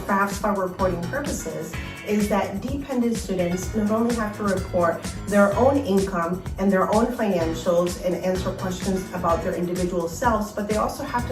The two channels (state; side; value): identical; both; correlation 1.00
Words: FAFSA reporting purposes is that dependent students not only have to report their own income and their own financials and answer questions about their individual selves, but they also have